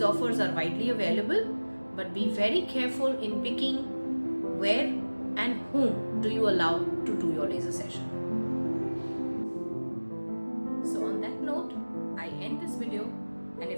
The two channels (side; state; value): both; inverted; correlation -1.00